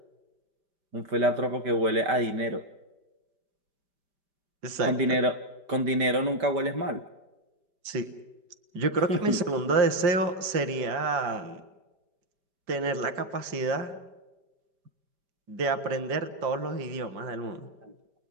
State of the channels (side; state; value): left; late; 5.0 ms